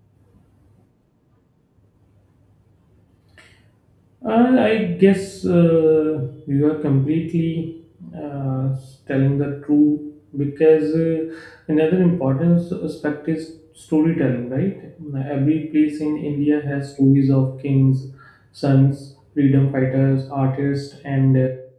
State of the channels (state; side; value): identical; both; correlation 1.00